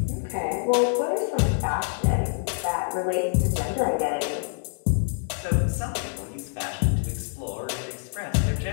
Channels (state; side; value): silent; right; 61 dB below the other